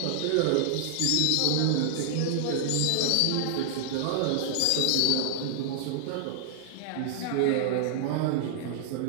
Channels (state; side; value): different; both; correlation -0.01